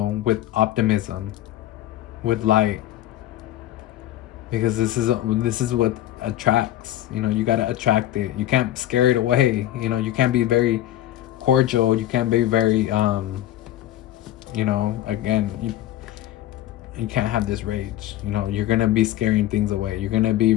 with optimism, with light, because this is what attracts. You know, you gotta attract it. You can't scare it away. You know, you can't be very cordial. You can't be very you know, again, you can't have this rage. You know, you're gonna be scaring things away. You're gonna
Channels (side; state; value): right; quieter; 13.5 dB